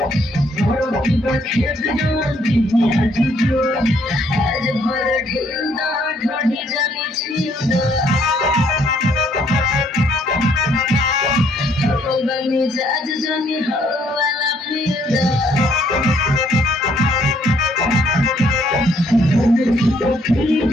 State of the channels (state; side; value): normal; both; correlation 0.67